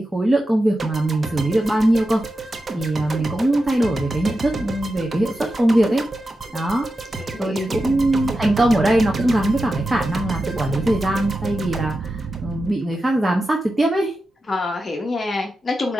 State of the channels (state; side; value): normal; both; correlation 0.90